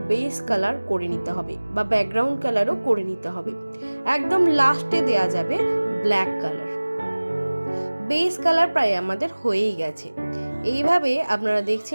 বেস কালার করে নিতে হবে বা ব্যাকগ্রাউন্ড কালারও করে নিতে হবে। একদম লাস্টে দেয়া যাবে ব্ল্যাক কালার। বেস কালার প্রায় আমাদের হয়েই গেছে। এইভাবে আপনারা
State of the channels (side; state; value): both; inverted; correlation -1.00